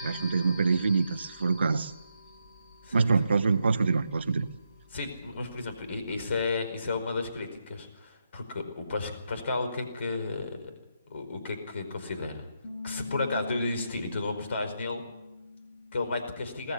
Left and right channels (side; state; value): both; inverted; correlation -0.81